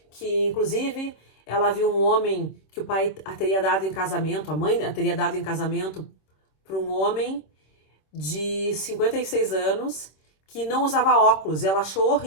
Que, inclusive, ela viu um homem que o pai a teria dado em casamento, a mãe a teria dado em casamento para um homem de 56 anos que não usava óculos. E ela achou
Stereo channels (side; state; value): right; late; 26 ms